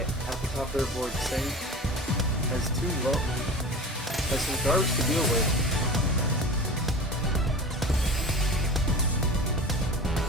the top of their board saying has some garbage to deal with.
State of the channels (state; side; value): normal; both; correlation 0.35